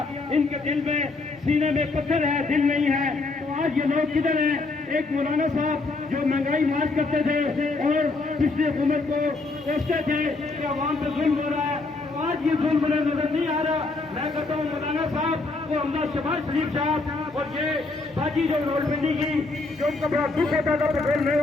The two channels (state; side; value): quieter; right; 3.5 dB